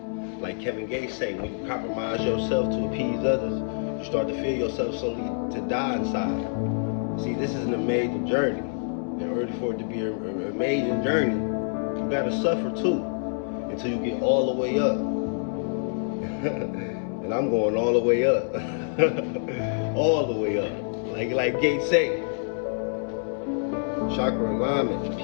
Like Kevin Gates say, when you compromise yourself to appease others, you start to feel yourself slowly to die inside. See, this is an amazing journey. In order for it to be an amazing journey, you gotta suffer too, until you get all the way up. And I'm going all the way up. All the way up. Like Gates say. Chakra alignment,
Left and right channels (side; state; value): right; silent; digital silence